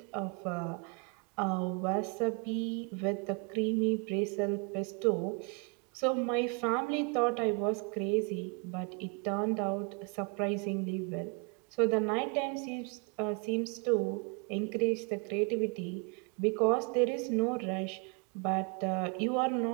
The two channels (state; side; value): quieter; left; 34.2 dB